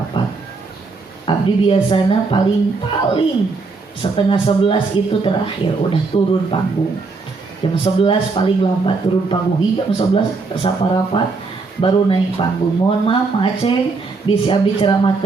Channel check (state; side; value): quieter; left; 4.1 dB